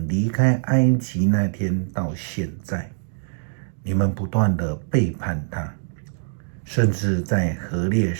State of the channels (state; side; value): silent; left; digital silence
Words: 离开埃及那天到现在，你们不断的背叛他，甚至在何烈